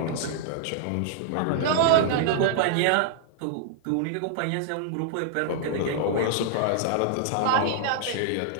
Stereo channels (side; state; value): both; different; correlation -0.01